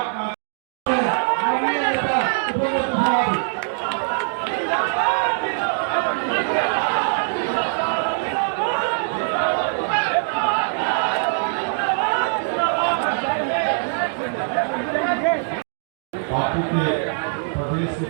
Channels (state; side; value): silent; left; digital silence